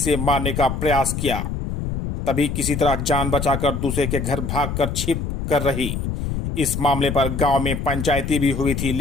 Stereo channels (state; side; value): noise; left; rumble, 3 dB below the sound